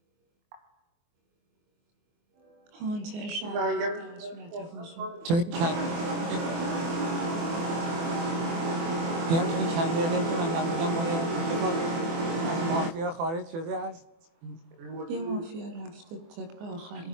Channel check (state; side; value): late; left; 24 ms